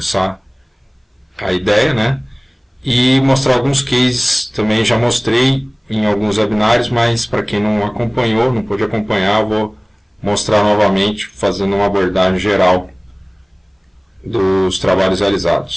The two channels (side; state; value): both; identical; correlation 1.00